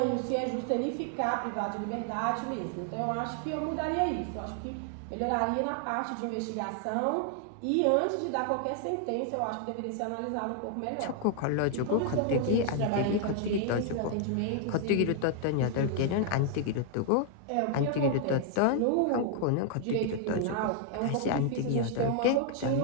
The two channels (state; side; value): different; both; correlation 0.00